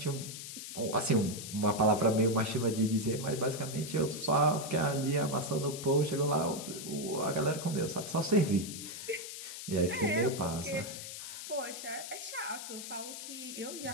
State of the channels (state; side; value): noise; left; hiss, 9 dB below the sound